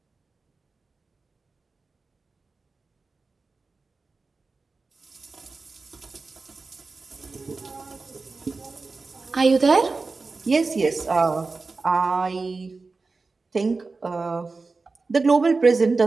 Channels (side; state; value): left; quieter; 4.0 dB